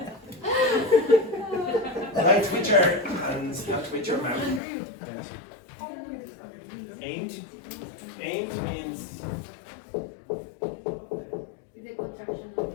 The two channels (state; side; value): drops out; right; at 4.6 s